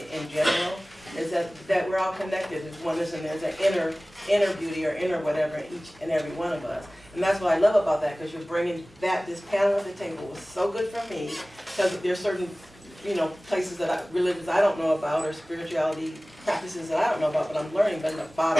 general, is that we're all connected. There's oneness and there's an inner beauty or inner whatever in each and every one of us. And that's what I love about that, because you're bringing this panel at the table was so good for me, because there's certain places religions I don't know about, or spirituality practices that I don't know about, but I'm learning. But in the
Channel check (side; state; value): both; normal; correlation 0.98